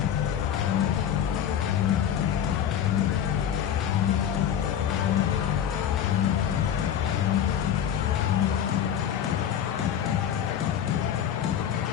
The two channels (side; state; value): right; quieter; 9.5 dB